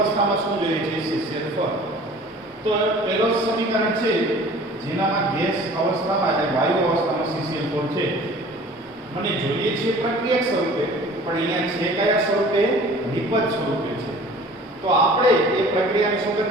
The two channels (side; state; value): both; normal; correlation 0.47